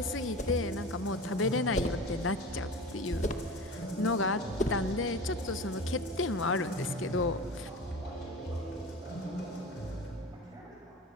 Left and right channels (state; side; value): normal; both; correlation 0.33